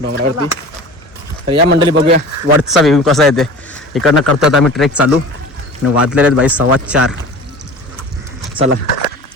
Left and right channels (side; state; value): both; normal; correlation 0.38